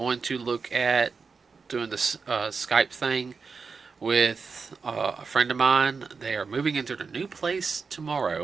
to look at doing this Skype thing with a friend of mine. They are moving into their new place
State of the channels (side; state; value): left; quieter; 5.0 dB